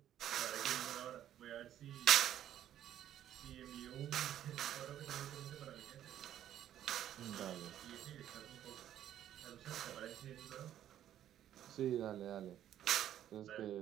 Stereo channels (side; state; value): left; quieter; 11.3 dB